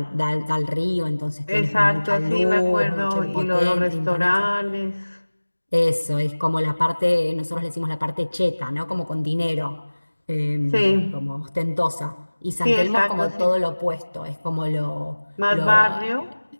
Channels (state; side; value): inverted; both; correlation -1.00